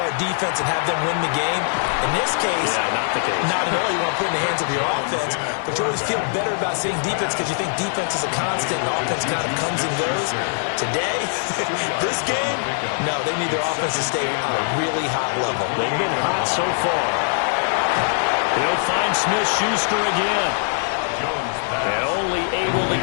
defense and have them win the game? In this case, not the case. Not at all. You want to put it in the hands of your offense, but you always feel better about seeing defense because you think defense is a constant and offense kind of comes and goes. Today, this game, no, they need their offense to stay on a really high level. They've been hot so far. They'll find Smith-Schuster again. And only able to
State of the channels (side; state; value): right; silent; 64 dB below the other